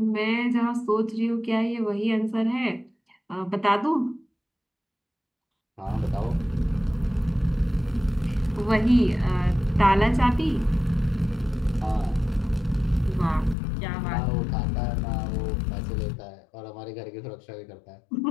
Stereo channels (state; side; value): drops out; right; at 13.6 s